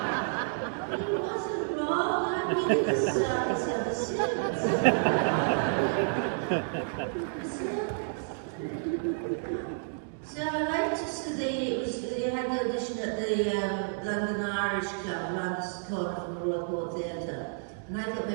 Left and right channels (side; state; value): left; silent; digital silence